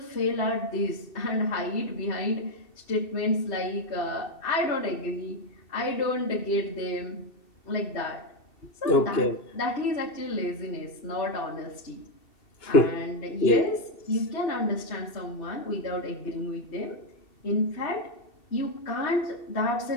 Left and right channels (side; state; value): right; late; 2.7 ms